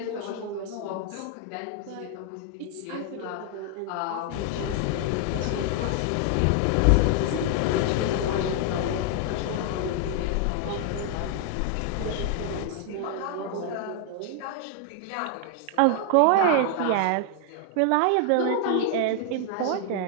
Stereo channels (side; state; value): both; different; correlation 0.00